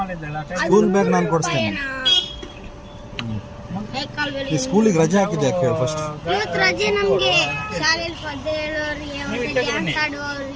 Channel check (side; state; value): both; identical; correlation 1.00